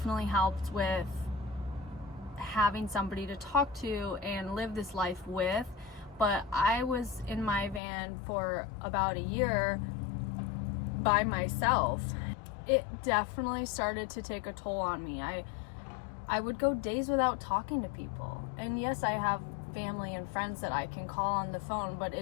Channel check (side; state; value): right; drops out; at 7.8 s